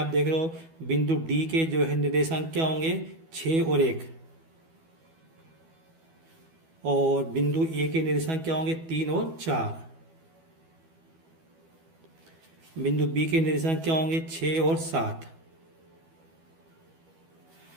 देख रहे हो बिंदु डी के जो है निर्देशांक क्या होंगे, 6 और 1, और बिंदु ए के निर्देशांक क्या होंगे 3 और 4। बिंदु बी के निर्देशांक क्या होंगे 6 और 7।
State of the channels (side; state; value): left; late; 12 ms